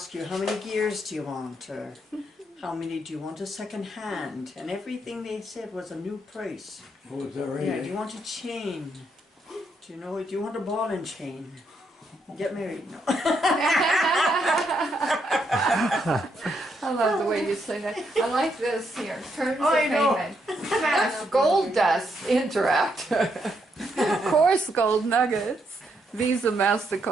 you, how many gears do you want? Or how many do you want a second hand? And everything they said was a new price. Oh, is that right? Yeah, do you want a chain? Do you know, do you want a ball and chain? Get married? No. I love the way you say that. I like this here. Terms of I know. payment. Cash, gold dust, Interact. Coarse gold nuggets, Visa,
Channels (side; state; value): both; normal; correlation 0.77